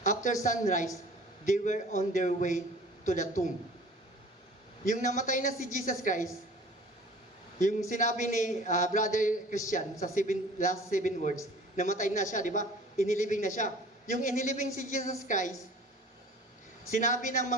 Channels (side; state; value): both; normal; correlation 0.47